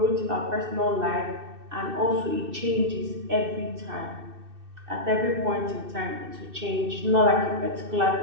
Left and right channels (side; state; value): left; late; 2.6 ms